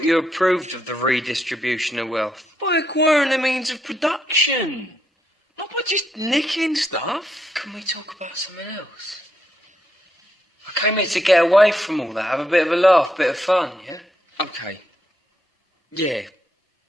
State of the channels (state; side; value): normal; both; correlation 0.78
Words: you approved of the redistribution of wealth. By acquiring the means of production. Not by just nicking stuff. Can we talk about something else? I came here to get away from all that, have a bit of a laugh, bit of fun, yeah? Okay. Yeah.